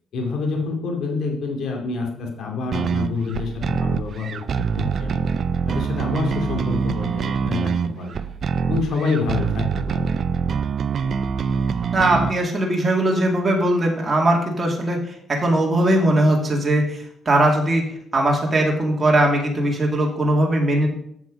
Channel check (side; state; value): both; normal; correlation 0.78